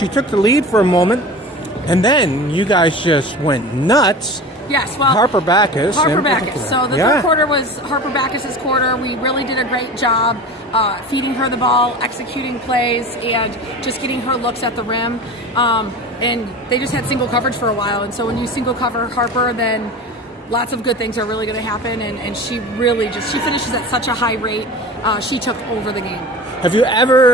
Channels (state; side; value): normal; both; correlation 0.34